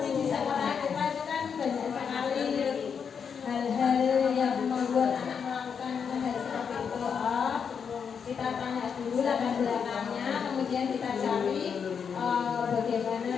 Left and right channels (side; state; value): right; quieter; 6.8 dB